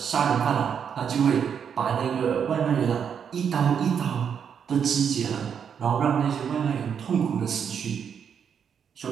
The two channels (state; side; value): quieter; left; 7.5 dB